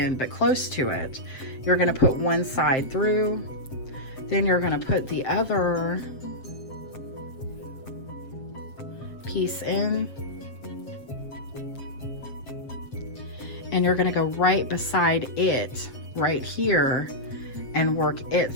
but close to it, you're gonna put one side through, then you're gonna put the other piece in, and you're gonna go right beside it, right here, and work it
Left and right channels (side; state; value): right; late; 7.6 ms